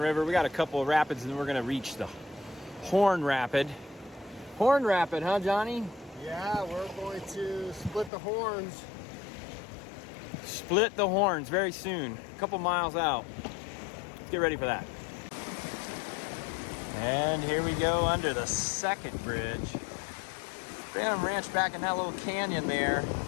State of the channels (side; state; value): right; drops out; at 8.1 s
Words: We got a couple of rapids, and then we're gonna reach the Horn Rapid. Horn Rapid, huh, Johnny? Yeah, we're going to split the horns. Split the horns very soon, a couple miles out. Let's get ready for that. And here we go under the second bridge. Phantom Ranch back in that little canyon there.